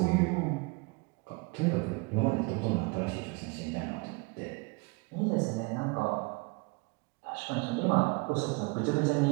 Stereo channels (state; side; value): quieter; left; 27.9 dB